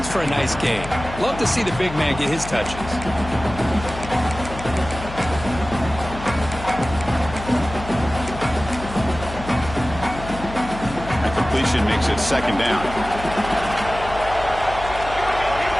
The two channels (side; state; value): left; noise; hum, 11 dB below the sound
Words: for a nice gain. Love to see the big man get his touches. Makes it 2nd down.